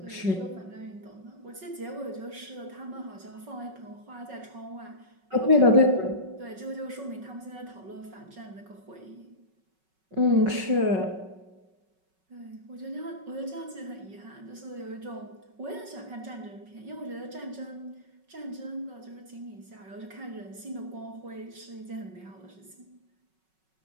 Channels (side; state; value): left; late; 5.3 ms